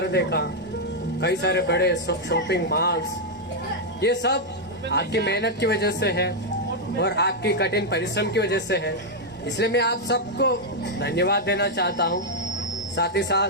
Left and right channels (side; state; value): both; normal; correlation -0.02